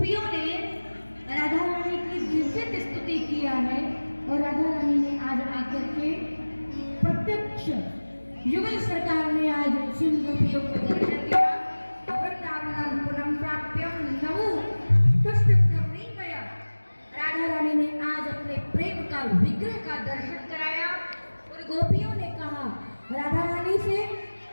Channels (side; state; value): both; inverted; correlation -1.00